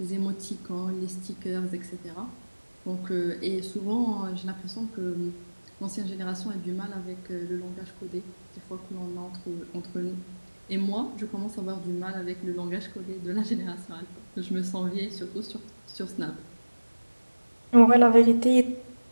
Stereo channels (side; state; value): both; inverted; correlation -1.00